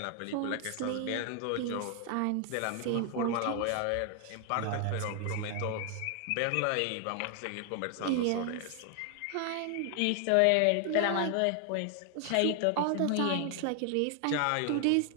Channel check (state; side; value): different; both; correlation 0.00